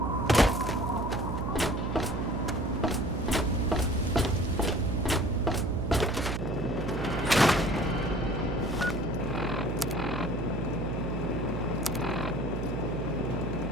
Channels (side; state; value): right; noise; hum, 3 dB below the sound